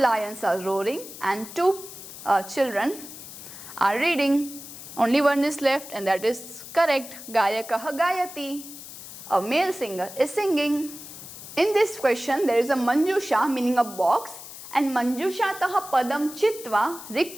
are roaring and two children are reading. Only one is left and that is correct. Gayakah gayati. A male singer is singing. In this question there is a manjusha meaning a box and manjushatah padam chitva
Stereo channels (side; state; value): left; noise; hiss, 13 dB below the sound